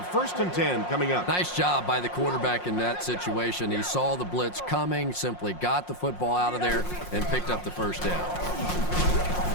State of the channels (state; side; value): late; right; 5.6 ms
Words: 1st and 10 coming up. Nice job by the quarterback in that situation. He saw the blitz coming, simply got the football out of there, and picked up the first down.